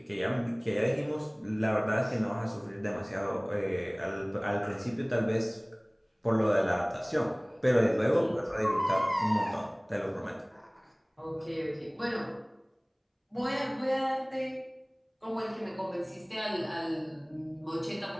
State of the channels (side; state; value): both; identical; correlation 1.00